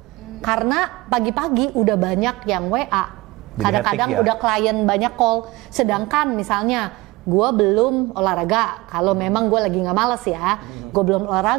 Karena pagi-pagi udah banyak yang WA, kadang-kadang udah klien banyak call. Sedangkan misalnya gue belum olahraga, kalau memang gue lagi nggak males ya, gue belum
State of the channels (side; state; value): left; quieter; 21.3 dB